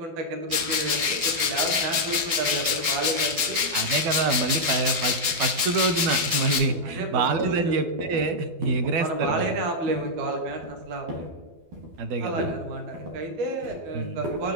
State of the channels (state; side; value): late; left; 12 ms